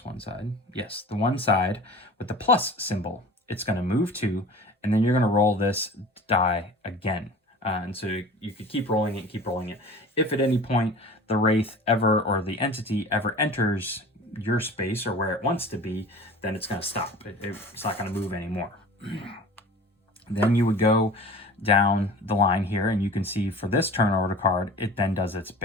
one side. Yes, the one side with the plus symbol, it's going to move 2, and then you're going to roll this die again. And so you could keep rolling it, keep rolling it. If at any point the Wraith ever, or the entity ever enters your space or where it wants to be, then it's going to stop. It's not going to move anymore. Then you would go down the line here, and you can see for this turn order card, it then does its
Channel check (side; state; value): both; normal; correlation 0.40